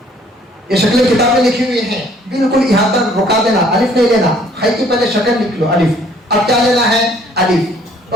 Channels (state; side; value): normal; both; correlation 0.60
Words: ये शक्लें किताब में लिखी हुई हैं, बिल्कुल यहाँ तक रुका देना, अलिफ नहीं लेना। खे की पहले शक्ल लिख लो अलिफ, अब क्या लेना है? अलिफ,